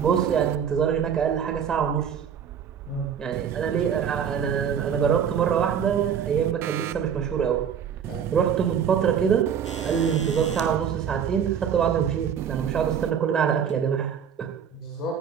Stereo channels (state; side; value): quieter; left; 7.9 dB